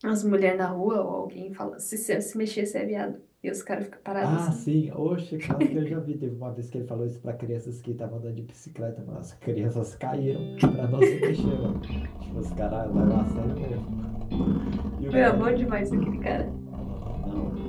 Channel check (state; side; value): identical; both; correlation 1.00